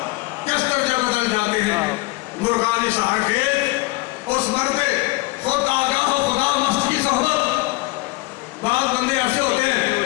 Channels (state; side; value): quieter; right; 21.7 dB